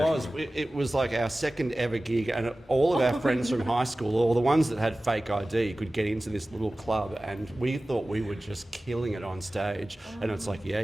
it was like our second ever gig, and all of our friends from high school, or the ones that had fake ID, could get into this little club, and we thought we were just killing it on stage. And it's like, yeah,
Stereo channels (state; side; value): normal; both; correlation 0.97